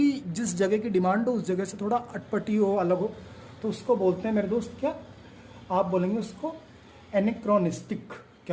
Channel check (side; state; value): both; identical; correlation 1.00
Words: जिस जगह की डिमांड हो उस जगह से थोड़ा अटपटी हो, अलग हो, तो उसको बोलते हैं मेरे दोस्त क्या? आप बोलेंगे उसको एनेक्रोनिस्टिक।